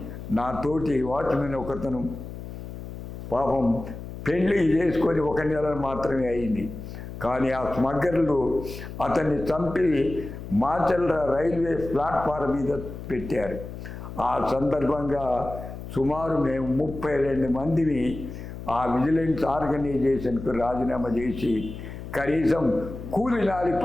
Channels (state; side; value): noise; left; hum, 10 dB below the sound